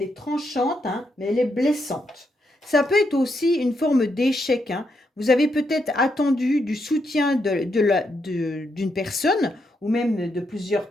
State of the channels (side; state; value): both; normal; correlation 0.80